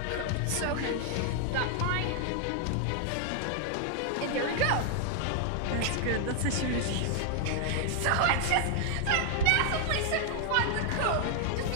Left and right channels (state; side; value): different; both; correlation 0.00